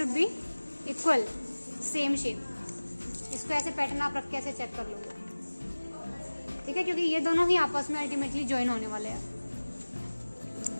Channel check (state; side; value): inverted; both; correlation -1.00